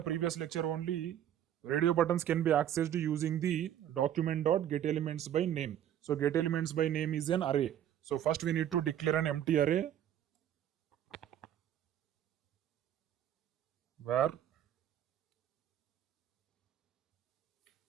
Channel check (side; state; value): left; quieter; 10.7 dB